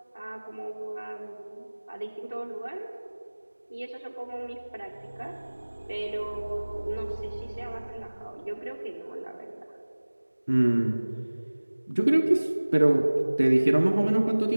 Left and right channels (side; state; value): both; inverted; correlation -1.00